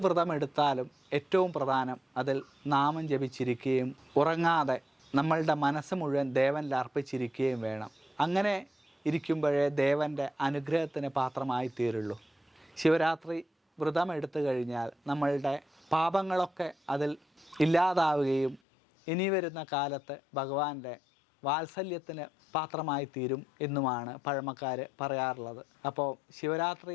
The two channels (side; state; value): right; drops out; at 18.6 s